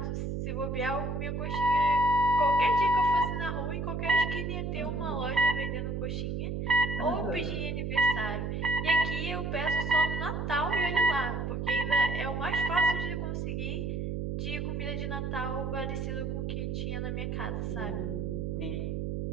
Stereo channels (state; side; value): noise; right; hum, 2 dB below the sound